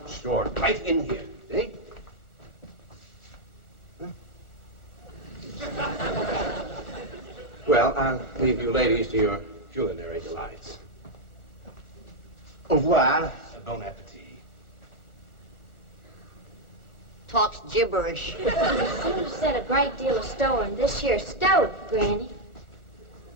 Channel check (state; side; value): late; right; 1.4 ms